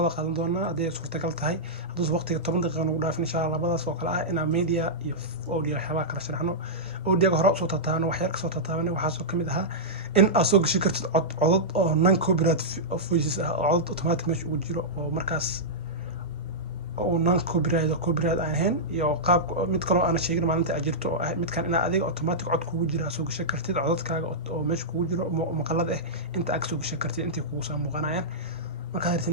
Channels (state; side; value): normal; both; correlation -0.12